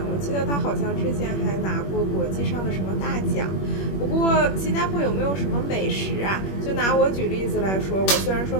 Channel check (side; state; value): right; late; 21 ms